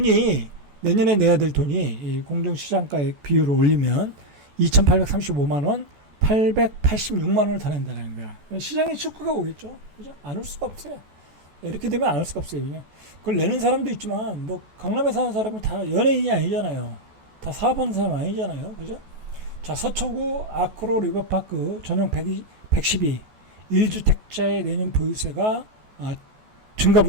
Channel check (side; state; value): left; late; 14 ms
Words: 내년에 내야 될 돈이 이 공정시장가액 비율을 올리면 2,835만 원, 886만 원을 더 낸다는 거야. 시장에 축구가 오겠죠. 그죠? 안 올 수가 없어요. 이렇게 되면 안 올 수가 없어요. 그냥 그걸 내는 사람도 있지만 뭐 강남에 사는 사람이 다 연예인이 아니잖아요. 다 사업하는 사람 아니잖아요. 그죠? 자, 서초구 아크로 리버파크 전용 112 1주택자의 내년 보유세가